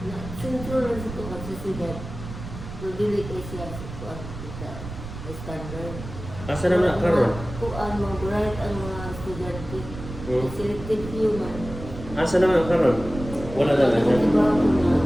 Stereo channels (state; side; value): noise; right; rumble, 11 dB below the sound